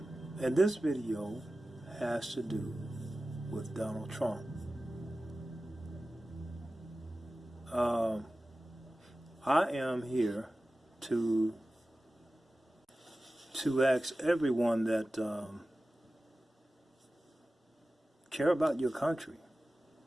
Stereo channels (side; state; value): both; normal; correlation 0.95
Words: And this video has to do with Donald Trump. I am here to ask everyone that care about your country